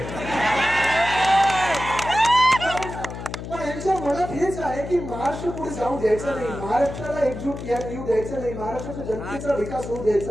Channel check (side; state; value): left; noise; hum, 9 dB below the sound